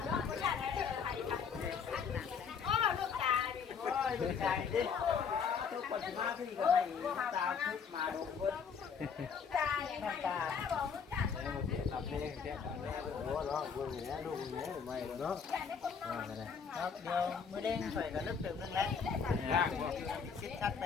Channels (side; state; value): right; quieter; 6.3 dB